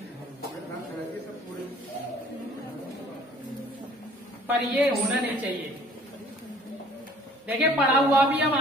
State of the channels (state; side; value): normal; both; correlation 0.54